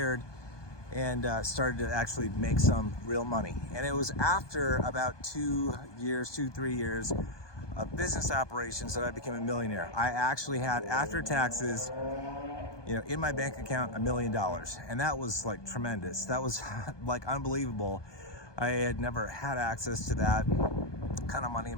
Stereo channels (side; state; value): right; late; 1.2 ms